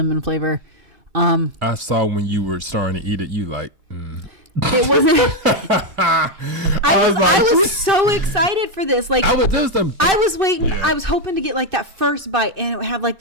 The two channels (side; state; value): left; late; 2.6 ms